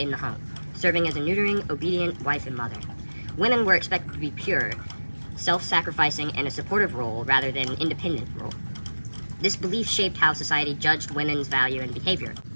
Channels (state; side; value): inverted; both; correlation -1.00